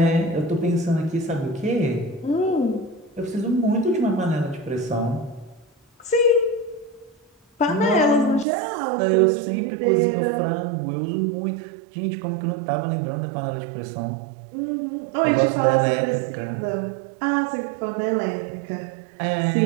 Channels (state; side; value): drops out; left; at 8.5 s